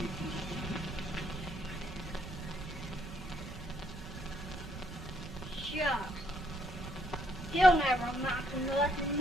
Shucks. He'll never amount to nothing,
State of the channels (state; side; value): noise; right; rumble, 11 dB below the sound